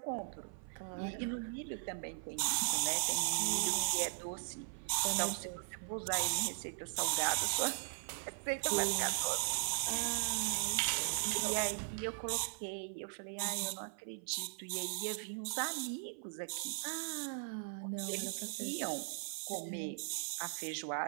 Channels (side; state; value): left; silent; 52 dB below the other